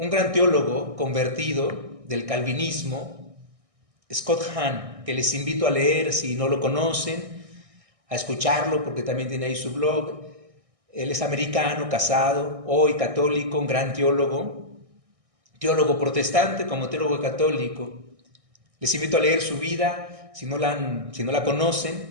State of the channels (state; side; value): late; left; 1.6 ms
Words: gran teólogo convertido del calvinismo, Scott Hahn, que les invito a leer si no lo conocen, a escucharlo porque también tiene ahí su blog. Él es americano, casado, hoy católico, un gran teólogo protestante como teólogo católico. Les invito a leer su vida, si no la